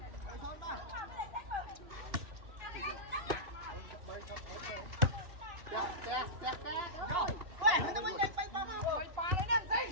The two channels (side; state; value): left; late; 2.8 ms